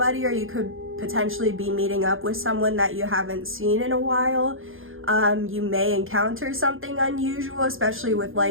or you could potentially be meeting up with someone that you haven't seen in a while. You may encounter something unusual, especially with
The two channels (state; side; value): late; left; 0.60 ms